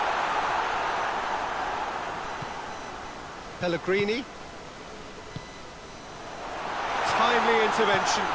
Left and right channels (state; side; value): identical; both; correlation 1.00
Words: Pellegrini. Timely intervention.